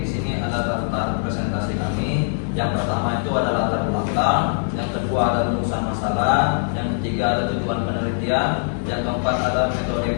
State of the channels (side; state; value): right; silent; digital silence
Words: di sini ada daftar presentasi kami. Yang pertama itu ada latar belakang, yang kedua ada rumusan masalah, yang ketiga ada tujuan penelitian, yang keempat ada